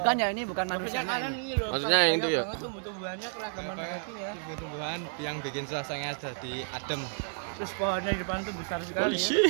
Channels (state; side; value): silent; left; 57 dB below the other